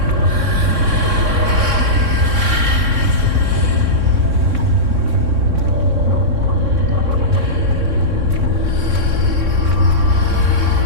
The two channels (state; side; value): late; left; 3.6 ms